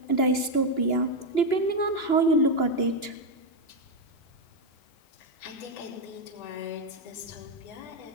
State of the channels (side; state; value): right; late; 2.9 ms